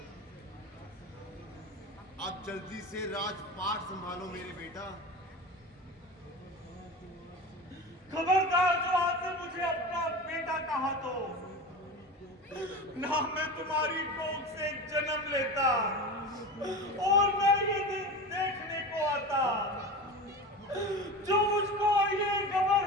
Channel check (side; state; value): both; normal; correlation 0.29